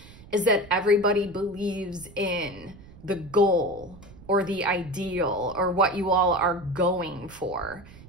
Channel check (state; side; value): noise; right; rumble, 20 dB below the sound